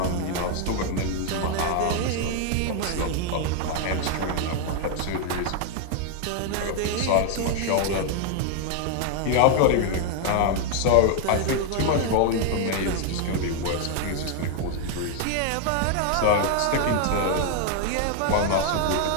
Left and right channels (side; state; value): both; different; correlation 0.00